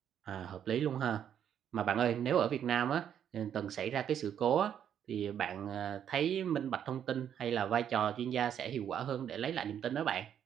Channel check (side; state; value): left; quieter; 9.2 dB